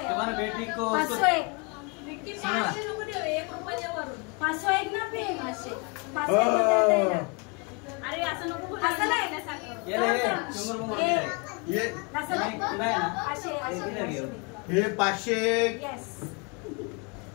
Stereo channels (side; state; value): right; quieter; 31.7 dB